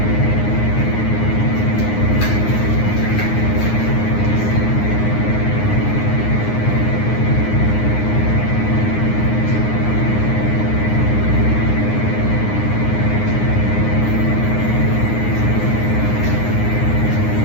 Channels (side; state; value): right; late; 9.6 ms